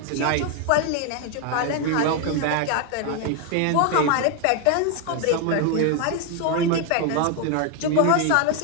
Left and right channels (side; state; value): both; different; correlation 0.01